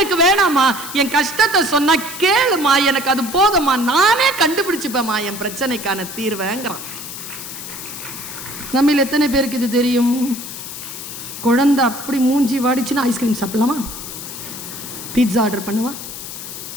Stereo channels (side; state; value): left; noise; hiss, 10 dB below the sound